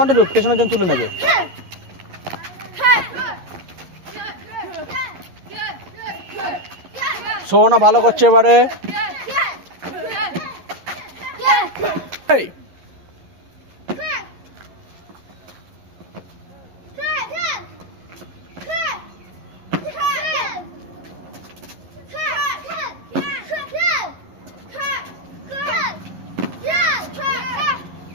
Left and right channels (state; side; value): late; left; 11 ms